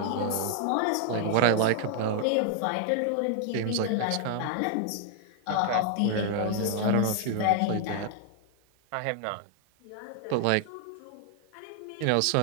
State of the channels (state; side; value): different; both; correlation 0.00